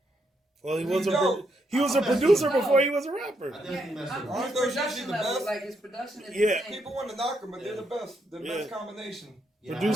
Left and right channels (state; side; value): normal; both; correlation 0.78